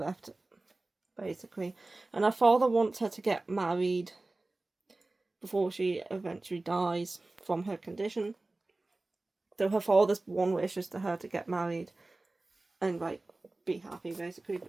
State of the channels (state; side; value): quieter; left; 3.0 dB